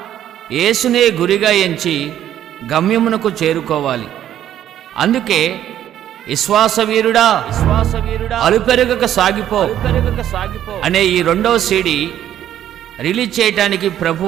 యేసునే గురిగా ఎంచి గమ్యమునకు చేరుకోవాలి. అందుకే విశ్వాసవీరుడా అలుపెరగక సాగిపో అనే ఈ రెండవ సీడీ రిలీజ్ చేయటానికి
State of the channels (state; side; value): quieter; left; 11.2 dB